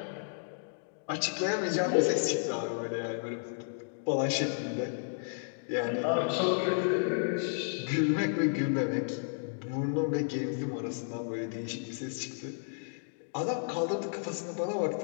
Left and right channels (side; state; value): right; silent; digital silence